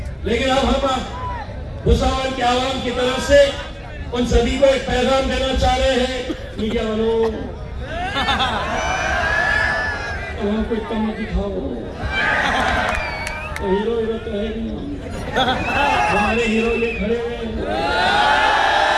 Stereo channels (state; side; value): identical; both; correlation 1.00